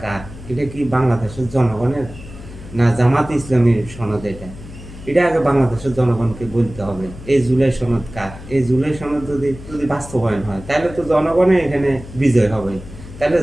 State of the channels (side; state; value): left; noise; hum, 15 dB below the sound